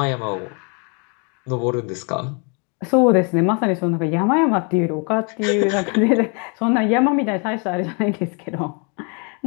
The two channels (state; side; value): quieter; right; 35.6 dB